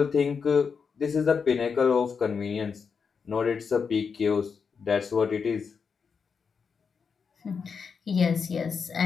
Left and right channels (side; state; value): right; quieter; 5.8 dB